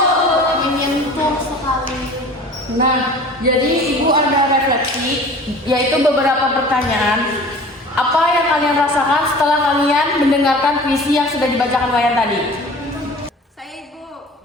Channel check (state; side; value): normal; both; correlation 0.43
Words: Menyentuh sekali. Nah, jadi ibu ada refleksi, yaitu beberapa pertanyaan. Apa yang kalian rasakan setelah kalian mendengarkan puisi yang sudah dibacakan Wayan tadi? Saya ibu,